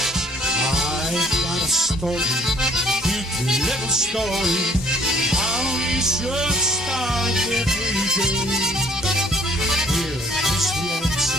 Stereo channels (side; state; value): both; normal; correlation 0.60